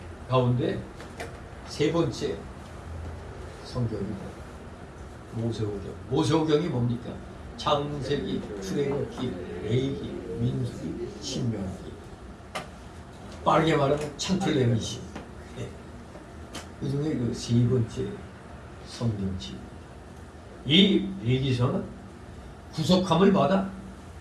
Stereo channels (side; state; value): both; identical; correlation 1.00